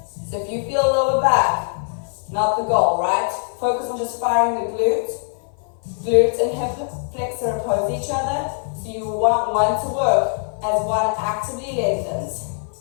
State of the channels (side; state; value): right; silent; 55 dB below the other